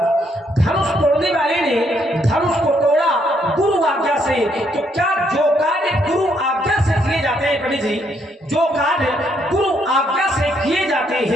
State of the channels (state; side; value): normal; both; correlation 0.72